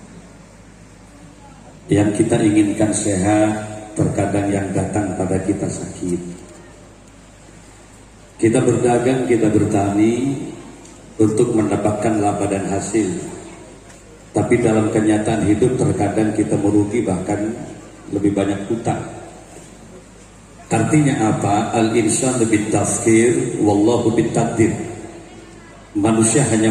Yang kita inginkan sehat, terkadang yang datang pada kita sakit. Kita berdagang, kita bertani untuk mendapatkan laba dan hasil. Tapi dalam kenyataan hidup terkadang kita merugi, bahkan lebih banyak hutang. Artinya apa? Al-insan lebih tafkir, wallahu bitaqdir. Manusia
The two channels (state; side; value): identical; both; correlation 1.00